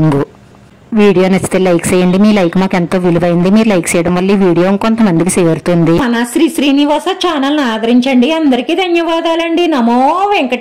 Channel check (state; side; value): identical; both; correlation 1.00